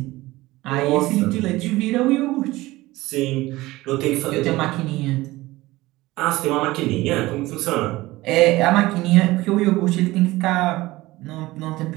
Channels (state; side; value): quieter; left; 18.8 dB